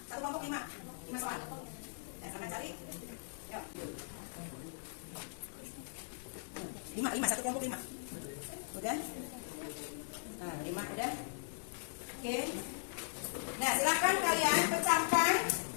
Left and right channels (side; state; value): right; silent; digital silence